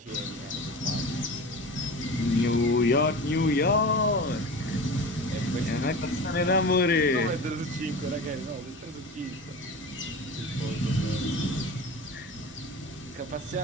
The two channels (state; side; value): normal; both; correlation 0.33